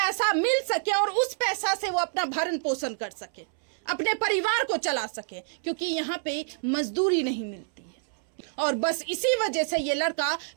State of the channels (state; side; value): silent; left; 60 dB below the other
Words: मिल सके और उस पैसा से वो अपना भरण पोषण कर सके, अपने परिवार को चला सके, क्योंकि यहाँ पे मजदूरी नहीं मिलती है। और बस इसी वजह से ये लड़का